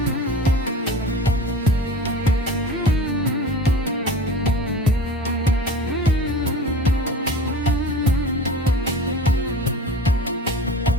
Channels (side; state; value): both; normal; correlation 0.37